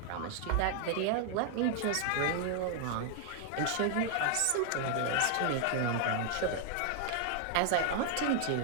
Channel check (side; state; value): both; different; correlation 0.00